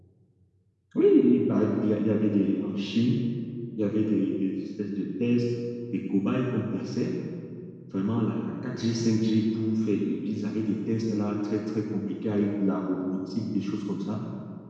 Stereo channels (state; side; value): identical; both; correlation 1.00